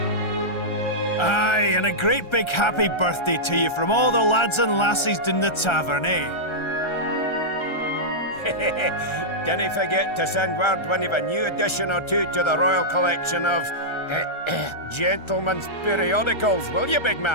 Aye, and a great big happy birthday to you from all the lads and lassies in the tavern, eh? Dinna forget to send word when you've a new edition or two to the Royal Collection of Gentlemen's Periodicals, will you, big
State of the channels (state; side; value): late; right; 1.3 ms